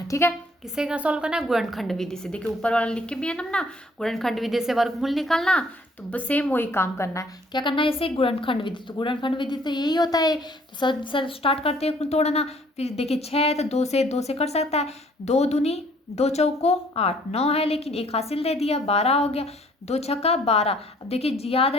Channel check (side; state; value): both; normal; correlation 0.60